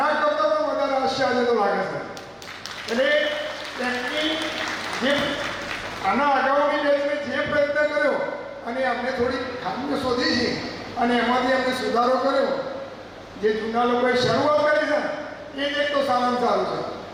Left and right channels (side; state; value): both; identical; correlation 1.00